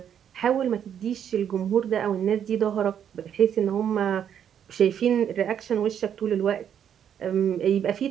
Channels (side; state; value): left; quieter; 8.9 dB